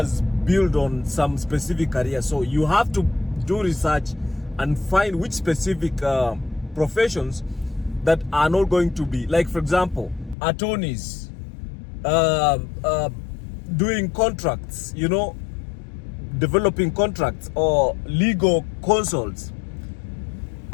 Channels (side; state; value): right; drops out; at 10.4 s